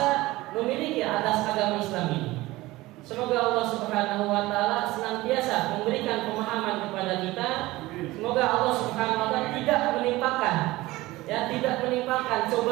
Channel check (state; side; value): quieter; left; 19.0 dB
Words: memiliki atas agama Islam ini. Semoga Allah Subhanahu wa taala senantiasa memberikan pemahaman kepada kita. Semoga Allah Subhanahu wa taala tidak menimpakan